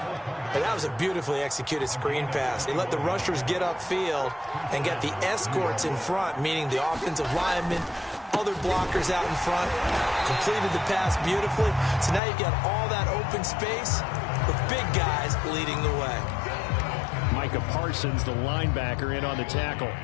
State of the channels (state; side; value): drops out; right; at 12.2 s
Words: And that was a beautifully executed screen pass. They let the rushers get upfield and get the escorts in front, meaning the offensive linemen, other blockers out in front, completed the pass beautifully. So now you've got all that open space with big guys leading the way. Micah Parsons, the linebacker, in on the tackle.